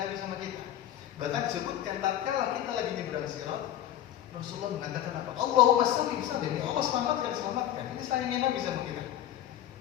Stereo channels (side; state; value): right; quieter; 11.9 dB